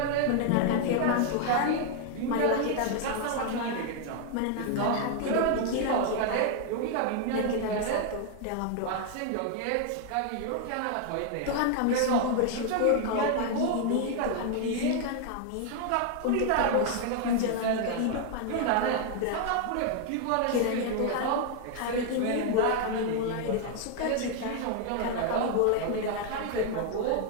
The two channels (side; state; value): both; different; correlation 0.00